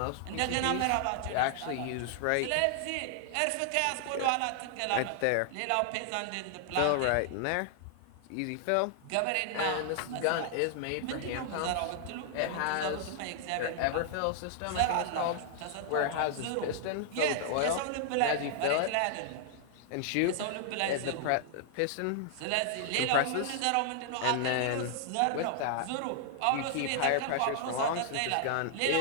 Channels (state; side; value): different; both; correlation 0.00